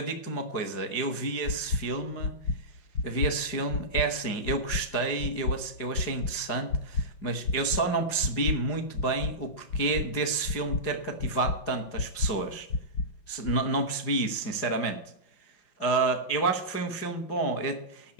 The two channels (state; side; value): late; right; 4.9 ms